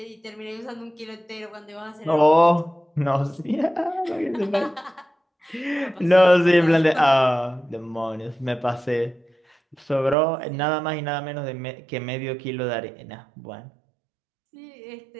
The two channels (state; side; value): drops out; left; at 10.2 s